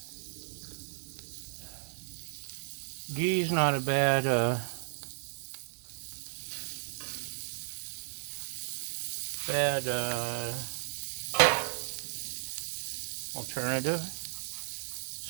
Ghee's not a bad alternative.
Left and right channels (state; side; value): silent; left; digital silence